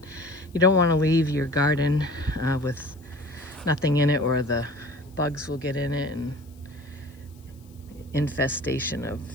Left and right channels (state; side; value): noise; left; hiss, 30 dB below the sound